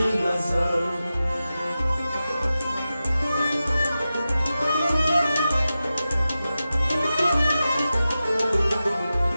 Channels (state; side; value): inverted; both; correlation -0.93